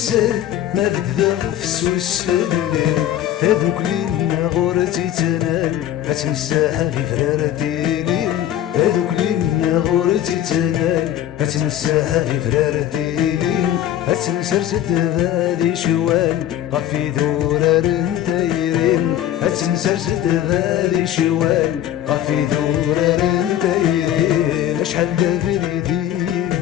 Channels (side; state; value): right; quieter; 11.7 dB